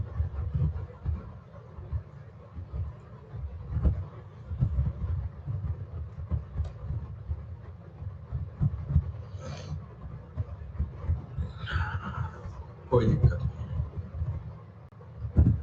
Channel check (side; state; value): both; identical; correlation 1.00